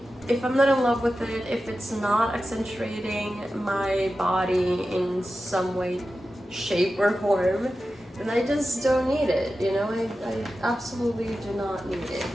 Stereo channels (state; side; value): normal; both; correlation 0.93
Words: if I'm not in love with it, if it's not accentuating my body in some way, shape, or form, then I just don't need it, you know? I absolutely do not need it.